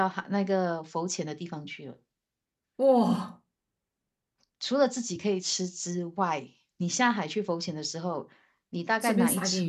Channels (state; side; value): identical; both; correlation 1.00